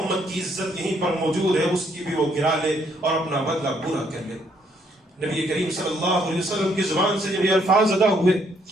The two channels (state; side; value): normal; both; correlation 0.70